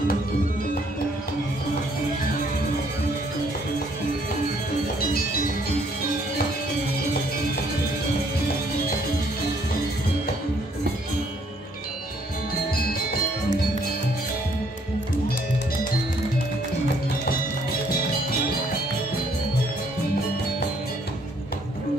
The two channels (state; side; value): normal; both; correlation 0.65